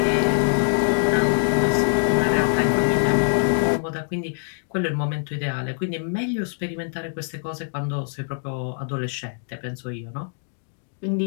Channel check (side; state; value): right; silent; digital silence